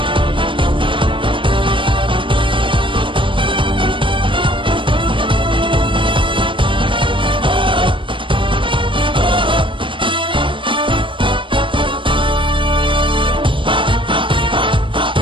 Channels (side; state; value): left; late; 0.25 ms